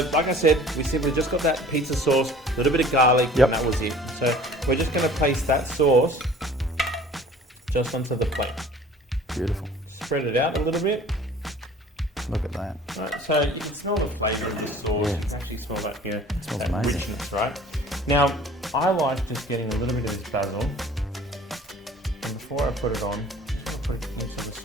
like I said, we simply just got that pizza sauce, a little bit of garlic, and that was it. So, we're just going to place that sauce just onto the plate. Beautiful. Spread it out a little bit. Look at that. Right, so you can smell the flavour of this sauce. Yeah. You can actually smell that, it smells that amazing. richness, right? Now, I like just getting a little bit of this basil, and before I put it on, I'm just going to put it into the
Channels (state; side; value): normal; both; correlation 0.49